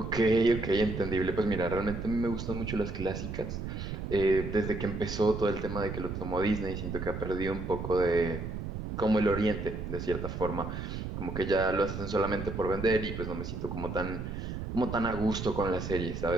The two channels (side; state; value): right; noise; rumble, 6 dB below the sound